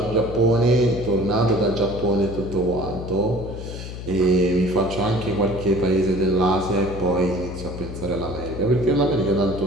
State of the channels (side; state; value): left; noise; hum, 9 dB below the sound